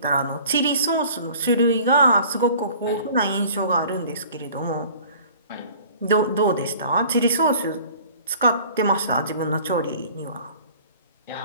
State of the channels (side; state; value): both; inverted; correlation -0.49